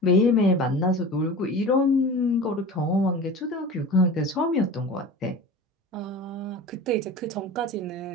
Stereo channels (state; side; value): normal; both; correlation 0.35